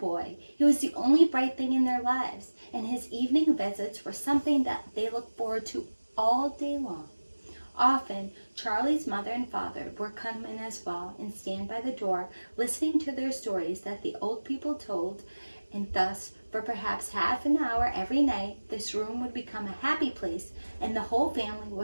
He was the only bright thing in their lives, and his evening visits were something that they looked forward to all day long. Often, Charlie's mother and father would come in as well and stand by the door, listening to their stories that the old people told, and thus, for perhaps half an hour every night, this room would become a happy place, and the whole family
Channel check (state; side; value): inverted; both; correlation -1.00